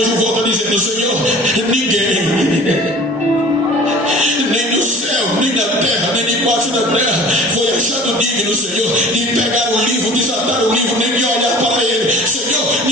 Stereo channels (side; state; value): both; normal; correlation 0.45